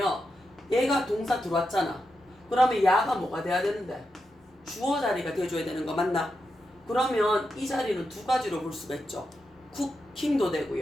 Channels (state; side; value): normal; both; correlation 0.87